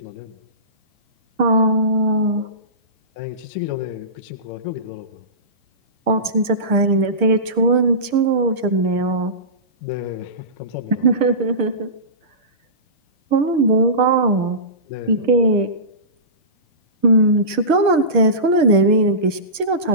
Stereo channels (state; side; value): late; right; 1.0 ms